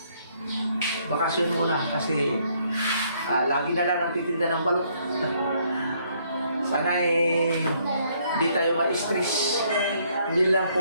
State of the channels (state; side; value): inverted; both; correlation -0.68